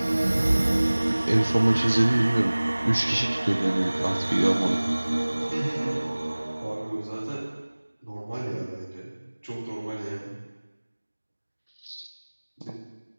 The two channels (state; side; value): inverted; both; correlation -1.00